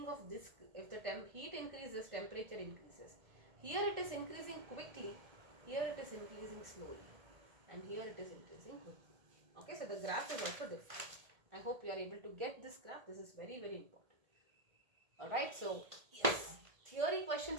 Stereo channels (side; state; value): left; late; 1.8 ms